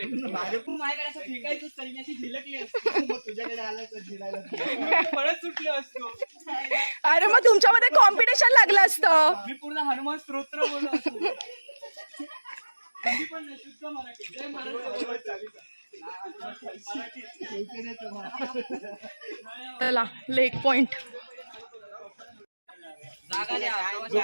माझ्याकडे असं फेकायचं सैन्याची झिलकली असते. मग तुझ्याकडे आलं तर जिरायला पळत सुटले असतो. अरे मग तुमच्यामध्ये कॉम्पिटिशन लागलं असतं. मी पूर्ण हनुमान स्तोत्र बोललो असतो. कधी पण नाही, शुद्ध मराठी. जय महाराष्ट्र. चला लेक पॉइंट. जागा द्या.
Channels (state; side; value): inverted; both; correlation -1.00